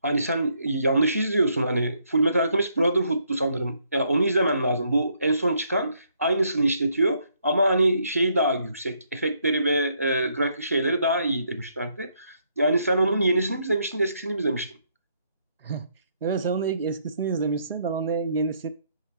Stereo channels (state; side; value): inverted; both; correlation -0.72